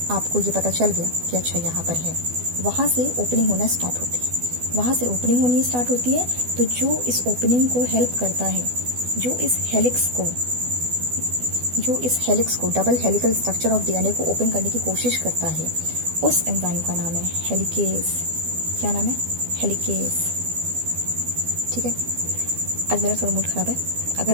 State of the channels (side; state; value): left; late; 12 ms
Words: आपको ये पता चल गया कि अच्छा यहाँ पर है, वहाँ से ओपनिंग होना स्टार्ट होती है। वहाँ से ओपनिंग होनी स्टार्ट होती है तो जो इस ओपनिंग को हेल्प करता है, जो इस हेलिक्स को जो इस हेलिक्स को, double helical structure of DNA को ओपन करने की कोशिश करता है, उस एंजाइम का नाम है हेलिकेज। क्या नाम है? हेलिकेज। ठीक है। आज मेरा थोड़ा मूड खराब है,